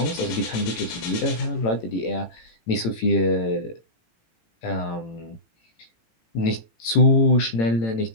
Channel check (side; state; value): right; late; 18 ms